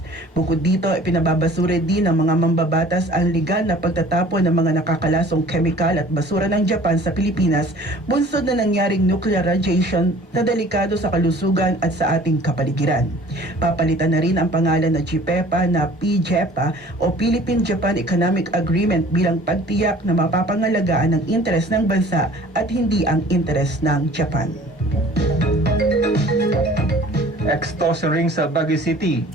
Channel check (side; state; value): both; normal; correlation 0.49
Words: Bukod dito, ipinababasura din ng mga mambabatas ang legal na pagtatapon ng mga nakakalasong chemical at basura ng Japan sa Pilipinas, bunsod na nangyaring nuclear radiation na delikado sa kalusugan at sa ating kapaligiran. Papalitan na rin ang pangalan na GPEPA na PJEPA o Philippine-Japan Economic Agreement bilang pagtiyak na mapapangalagaan ang interes ng bansa at hindi ang interes ng Japan. Extortion ring sa Baguio City,